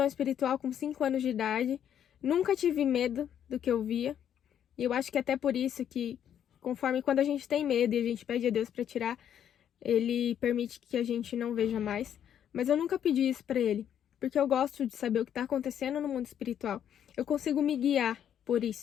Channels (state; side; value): quieter; right; 9.6 dB